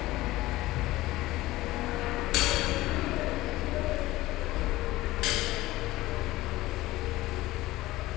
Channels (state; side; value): quieter; right; 17.8 dB